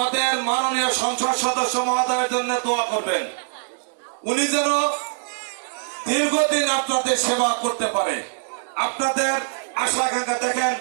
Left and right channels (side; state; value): left; silent; digital silence